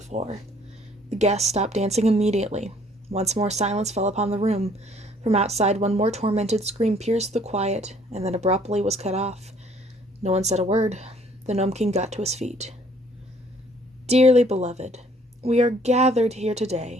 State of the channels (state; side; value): normal; both; correlation 0.60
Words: The guests stopped dancing immediately. Once more silence fell upon the room. From outside, one more tormented scream pierced the quiet, and then abruptly was cut off. No one said a word. The Gnome King got to his feet. Dearly beloved, we are gathered here